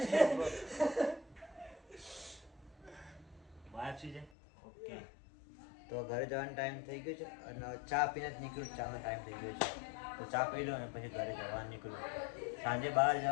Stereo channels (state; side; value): drops out; right; at 4.3 s